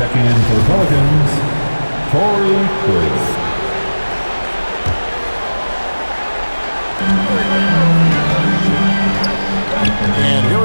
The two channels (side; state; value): both; inverted; correlation -1.00